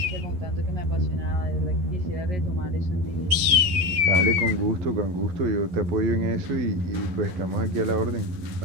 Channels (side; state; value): left; late; 11 ms